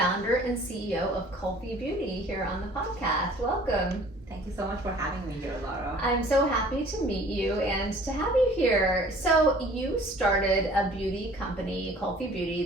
and CEO of Kulfi Beauty, here on the podcast. Welcome. Thank you so much for having me here, Lara. I'm so happy to meet you and to have you here. So, you started a beauty company, Kulfi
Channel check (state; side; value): normal; both; correlation 0.51